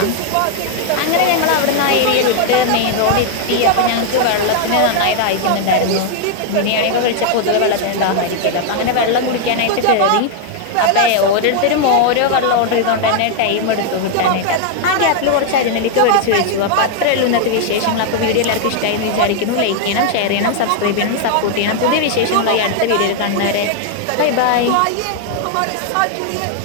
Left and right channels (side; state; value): both; different; correlation 0.00